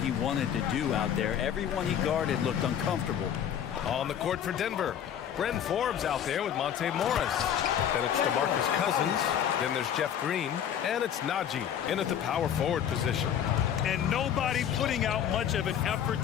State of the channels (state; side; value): quieter; right; 9.3 dB